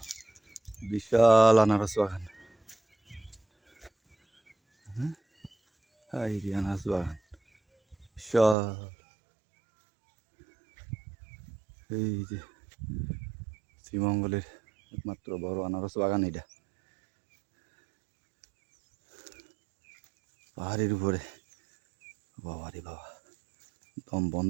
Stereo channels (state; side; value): drops out; left; at 8.6 s